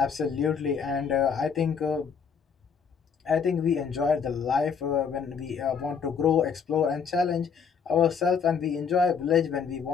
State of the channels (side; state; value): right; quieter; 6.4 dB